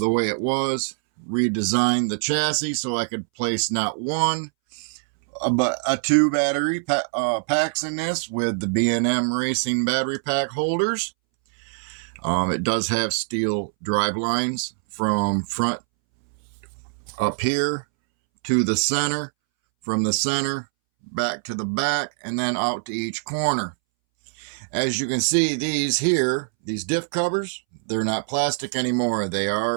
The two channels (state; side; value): silent; left; 63 dB below the other